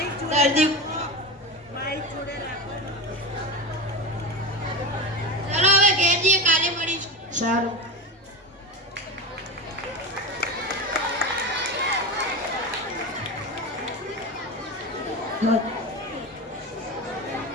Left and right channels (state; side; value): normal; both; correlation 0.23